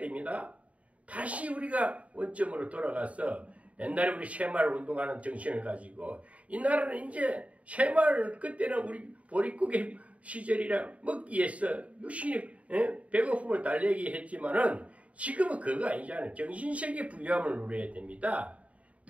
다시 우리가 원점으로 돌아가서 옛날에 우리 새마을 운동하는 정신을 가지고 이 나라는 이제 새마을 그때는 우리 보릿고개 시절이라 먹기 위해서 유신이 배고픔을 달래기 했지만은 지금은 그거 아니잖아요. 정신세계 부유함을 누려야 됩니다.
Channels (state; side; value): late; left; 0.066 ms